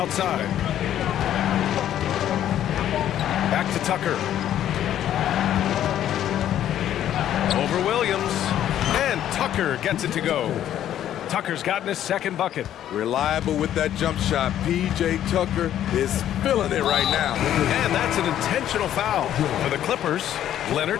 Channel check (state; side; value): quieter; right; 11.3 dB